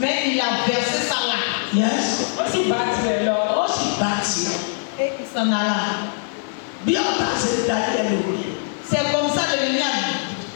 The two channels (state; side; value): silent; right; digital silence